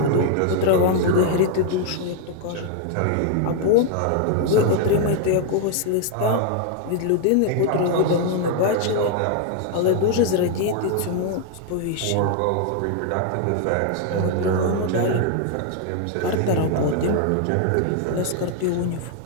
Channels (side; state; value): both; different; correlation 0.00